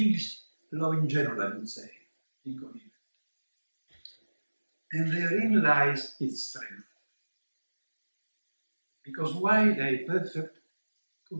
law in general, I would say, incoherent. And therein lies its strength. Because while a perfect,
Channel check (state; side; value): inverted; both; correlation -1.00